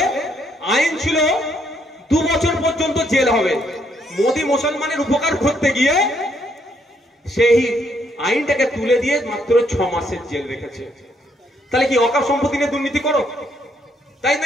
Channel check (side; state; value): both; normal; correlation 0.72